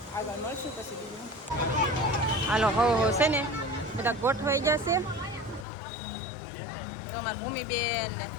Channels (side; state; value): right; drops out; at 5.7 s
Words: આગળ મળશું પછી બીજું. હાલો હો છે ને બધા ગોઠવાઈ જશે. તો મારી ભૂમિબેન ને